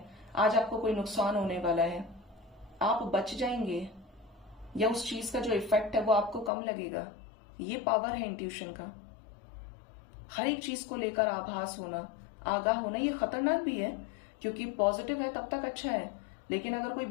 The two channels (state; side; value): drops out; right; at 6.5 s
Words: आज आपको कोई नुकसान होने वाला है, आप बच जाएंगे, या उस चीज का जो इफेक्ट है वो आपको कम लगेगा। ये पावर है इंट्यूशन का। हर एक चीज को लेकर आभास होना, आगाह होना, ये खतरनाक भी है, क्योंकि पॉजिटिव है तब तक अच्छा है, लेकिन अगर कोई